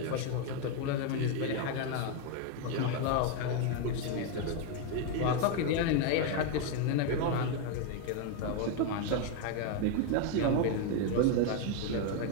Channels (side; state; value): both; different; correlation 0.01